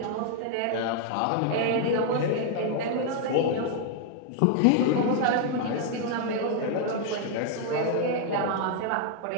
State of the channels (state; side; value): different; both; correlation 0.00